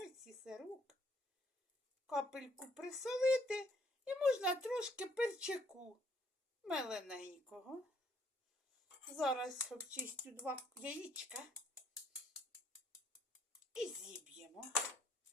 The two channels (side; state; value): both; normal; correlation 0.67